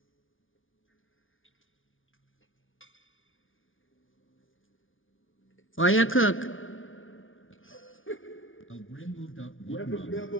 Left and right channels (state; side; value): late; right; 0.57 ms